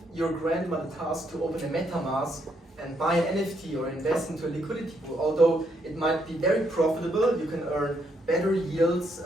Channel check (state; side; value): normal; both; correlation 0.75